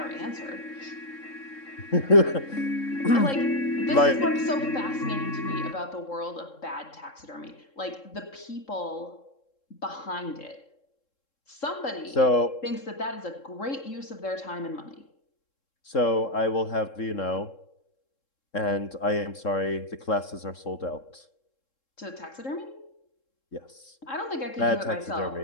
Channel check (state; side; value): late; right; 3.7 ms